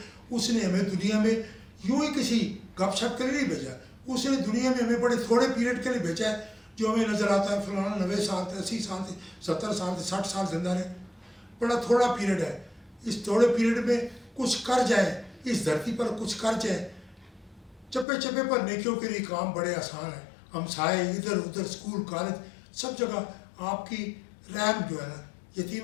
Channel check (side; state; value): right; drops out; at 18.1 s